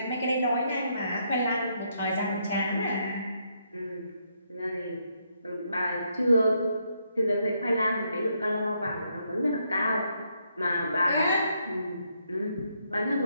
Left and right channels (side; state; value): both; inverted; correlation -0.76